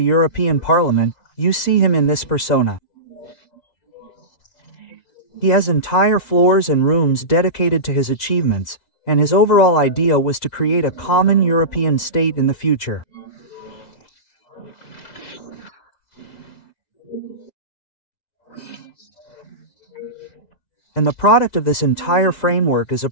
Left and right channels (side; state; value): right; late; 4.1 ms